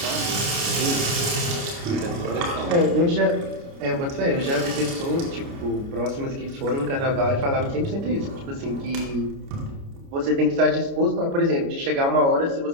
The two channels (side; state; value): left; late; 29 ms